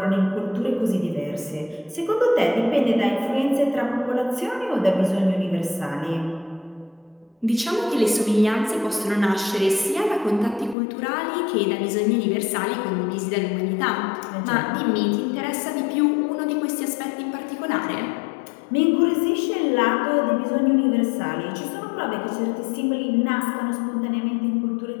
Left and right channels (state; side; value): drops out; right; at 10.8 s